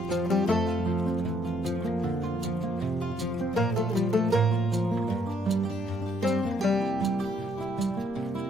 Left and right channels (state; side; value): normal; both; correlation 0.69